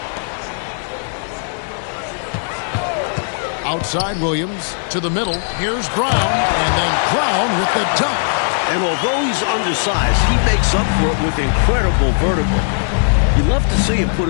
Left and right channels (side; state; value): right; silent; digital silence